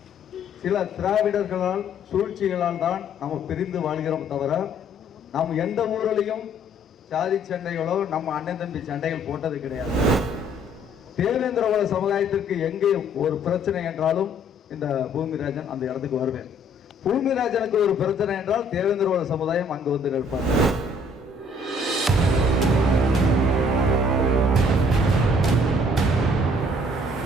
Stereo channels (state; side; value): normal; both; correlation 0.60